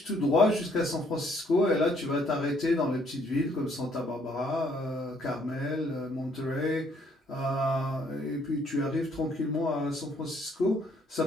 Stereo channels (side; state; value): both; normal; correlation 0.66